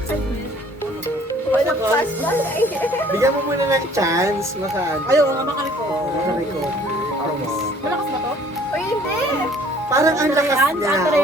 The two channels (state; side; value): normal; both; correlation 0.56